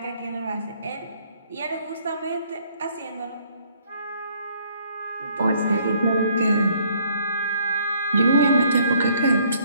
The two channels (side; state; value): both; inverted; correlation -0.64